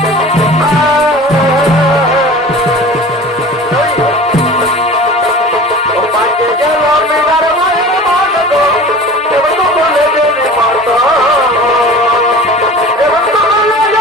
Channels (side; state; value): both; normal; correlation 0.39